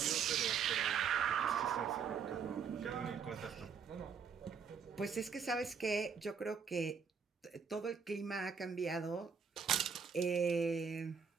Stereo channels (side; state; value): left; quieter; 6.3 dB